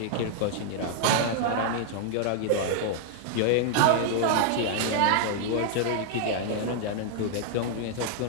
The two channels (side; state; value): both; different; correlation -0.01